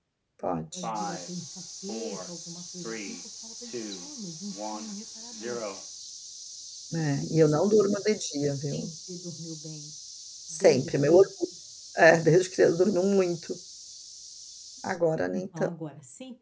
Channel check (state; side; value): identical; both; correlation 1.00